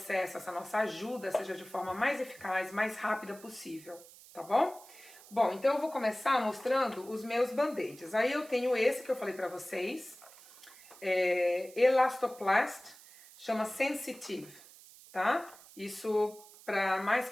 essa nossa ajuda seja de forma mais eficaz, mais rápida possível, tá bom? Bom, então eu vou começar mostrando os meus band-aids. Aí eu tenho esse que eu falei pra vocês, Elastoplast, chama Sensitive, tá? Isso mais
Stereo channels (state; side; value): noise; right; hiss, 21 dB below the sound